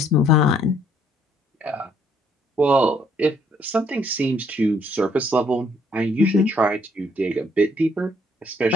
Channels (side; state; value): both; normal; correlation 0.66